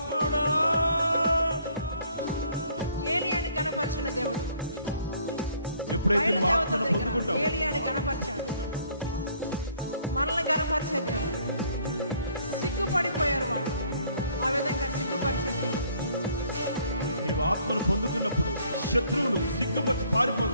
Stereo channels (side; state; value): both; inverted; correlation -0.61